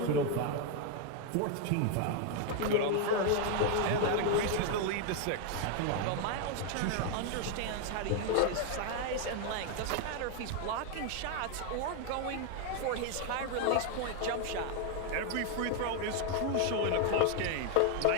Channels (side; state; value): both; different; correlation 0.01